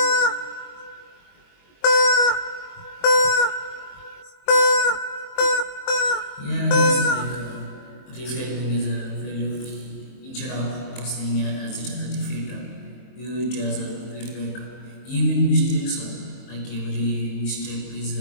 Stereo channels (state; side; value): late; right; 23 ms